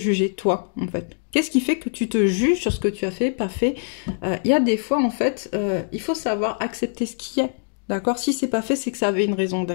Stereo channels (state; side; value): silent; right; digital silence